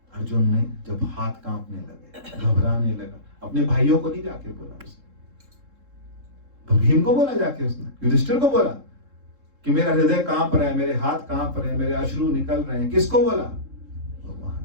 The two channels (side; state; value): left; late; 3.7 ms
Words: अर्जुन ने जब हाथ कांपने लगे, घबराने लगा, अपने भाइयों को नहीं जाके बोला उसने, भीम को बोला जाके, उसने युधिष्ठिर को बोला कि मेरा हृदय कांप रहा है, मेरे हाथ कांप रहे हैं, मेरे अश्रु निकल रहे हैं। किसको बोला? भगवान